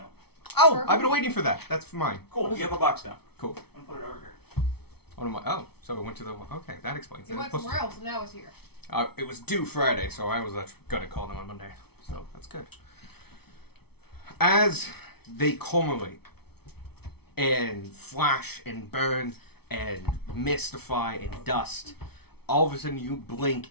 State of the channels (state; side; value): late; right; 0.97 ms